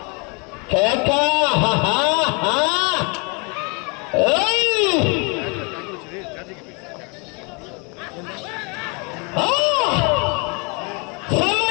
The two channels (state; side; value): quieter; right; 31.7 dB